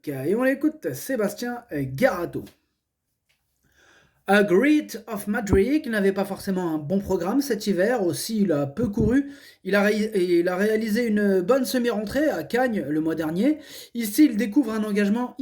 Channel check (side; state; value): both; identical; correlation 1.00